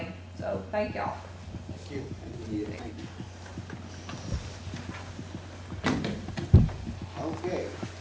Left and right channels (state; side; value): identical; both; correlation 1.00